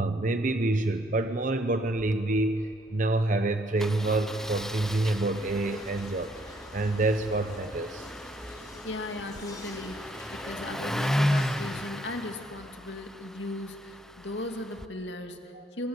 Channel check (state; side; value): normal; both; correlation 0.67